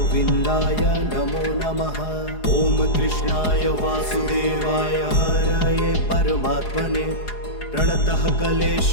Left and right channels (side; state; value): right; late; 4.8 ms